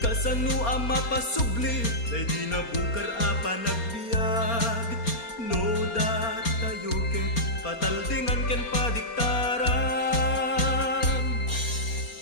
ang mapasubli, day di nabukar apa nagbiag. No dat tayo ket pataldingan ken padiktaran.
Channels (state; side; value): late; right; 4.3 ms